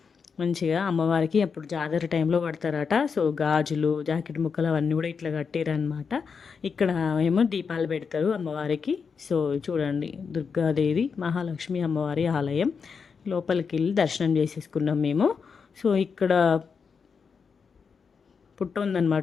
మంచిగా. అమ్మవారికి అప్పుడు జాతర టైంలో కడతారట. సో గాజులు జాకెట్ ముక్కలు అవన్నీ కూడా ఇట్లా కట్టిరనమాట. ఇక్కడ ఏమో దీపాలు పెడతారు అమ్మవారికి. సో చూడండి దుర్గాదేవి మహాలక్ష్మి అమ్మవారి ఆలయం. లోపలికి వెళ్ళి దర్శనం చేసేసుకున్నాం మేము. సో ఇక్కడ పుట్ట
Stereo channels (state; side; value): quieter; right; 5.8 dB